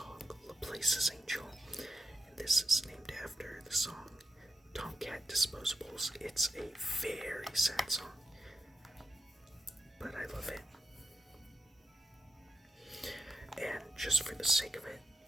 Laplace's Angel, and this is named after the song Tomcat Disposables. It's a very sad song, but I love it. And just for the sake of it,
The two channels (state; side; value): normal; both; correlation 0.88